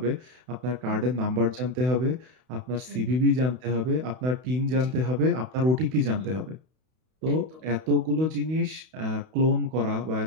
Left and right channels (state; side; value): late; left; 32 ms